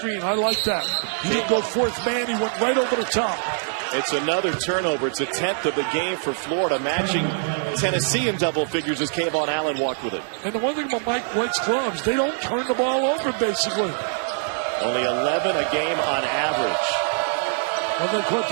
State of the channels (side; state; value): left; silent; digital silence